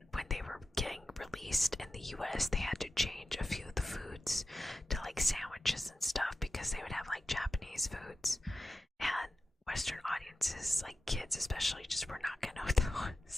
when they were getting released in the US, they had to change a few of the foods to like sandwiches and stuff because they would have like Japanese foods, and Western audiences, like kids especially, just were not gonna know what that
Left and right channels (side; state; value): both; normal; correlation 0.93